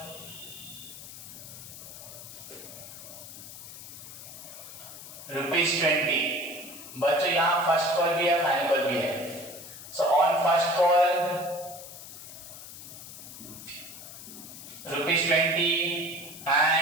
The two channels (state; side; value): noise; left; hiss, 13 dB below the sound